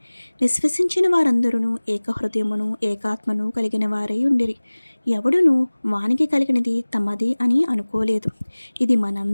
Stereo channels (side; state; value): both; inverted; correlation -1.00